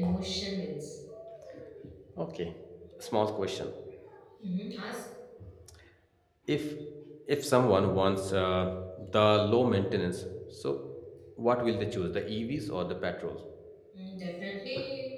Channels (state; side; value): identical; both; correlation 1.00